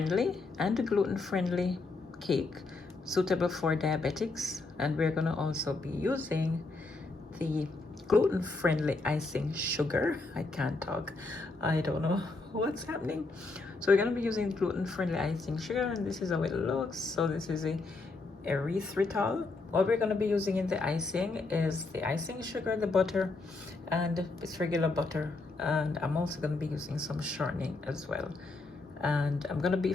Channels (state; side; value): quieter; right; 3.6 dB